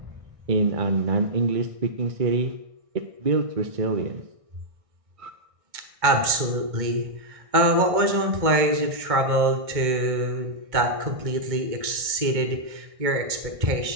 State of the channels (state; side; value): late; left; 1.6 ms